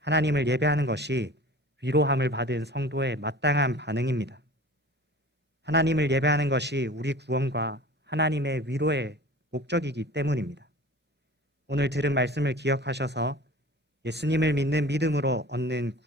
하나님을 예배하는 것이 위로함을 받은 성도의 마땅한 반응입니다. 하나님을 예배하는 것이 우리 구원과 하나님의 위로의 목적이기 때문입니다. 오늘 들은 말씀을 기억하셔서 예수님을 믿는 믿음으로 얻는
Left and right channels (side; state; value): both; normal; correlation 0.41